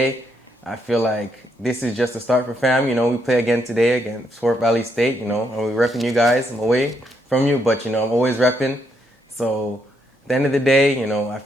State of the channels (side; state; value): both; normal; correlation 0.76